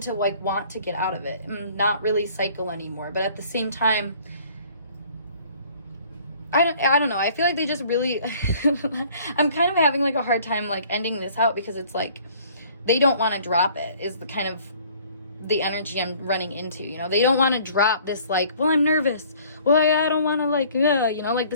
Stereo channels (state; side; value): inverted; both; correlation -0.55